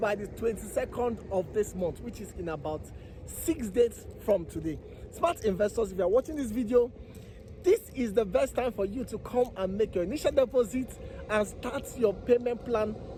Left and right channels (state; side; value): identical; both; correlation 1.00